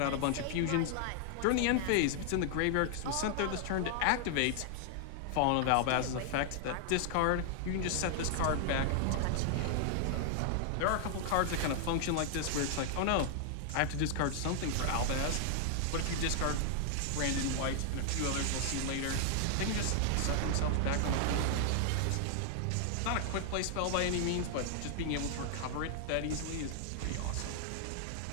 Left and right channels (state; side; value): different; both; correlation 0.00